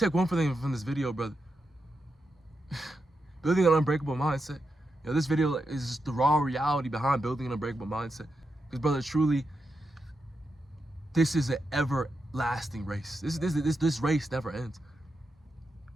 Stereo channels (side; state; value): both; normal; correlation 0.86